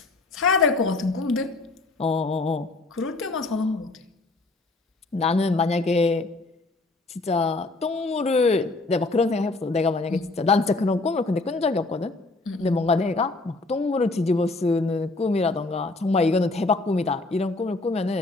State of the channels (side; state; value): right; quieter; 3.3 dB